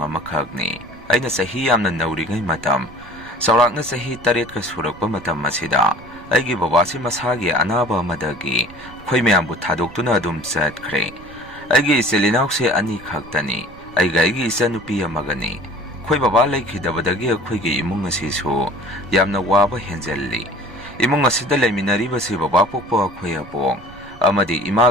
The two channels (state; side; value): noise; right; rumble, 20 dB below the sound